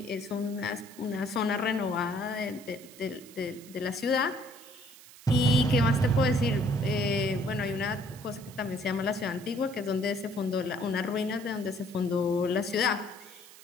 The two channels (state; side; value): noise; right; hiss, 20 dB below the sound